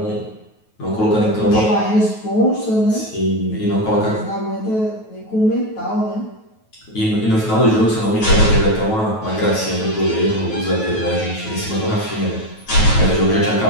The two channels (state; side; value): late; right; 9.2 ms